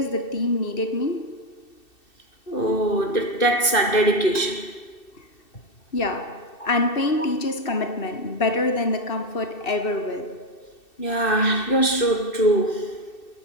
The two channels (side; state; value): right; late; 2.7 ms